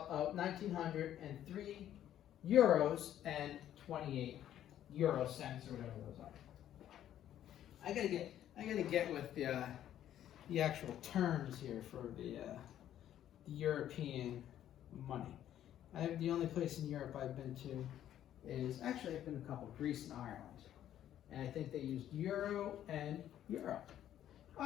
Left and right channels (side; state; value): right; quieter; 11.4 dB